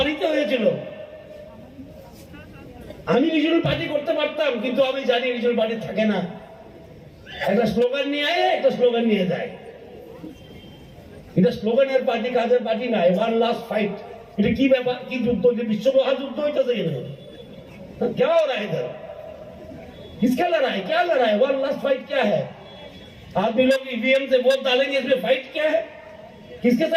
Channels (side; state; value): both; identical; correlation 1.00